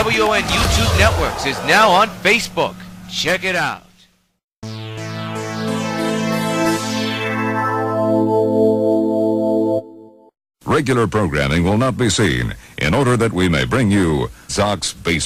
YouTube Networks is now on Facebook. Check it out. Regular programming will not be seen in order that we may bring you Sox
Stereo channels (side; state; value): both; identical; correlation 1.00